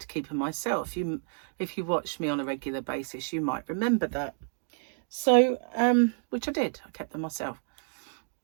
keep them myself. If you watch me on a regular basis, you might remember that. So which I did, I kept them myself.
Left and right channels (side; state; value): left; silent; 58 dB below the other